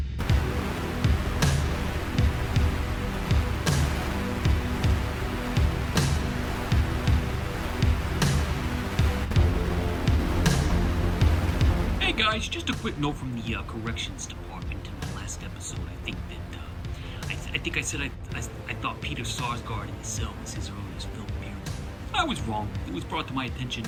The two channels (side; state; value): both; identical; correlation 1.00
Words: guys, just a quick note from the corrections department in the last episode. I think that I think I said I thought Peter Sarsgaard in the Cell was his earliest film appearance. I was wrong. It was brought to my attention